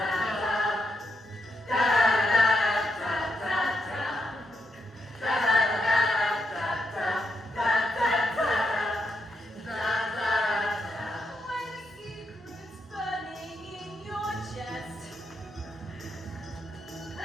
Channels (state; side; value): normal; both; correlation 0.82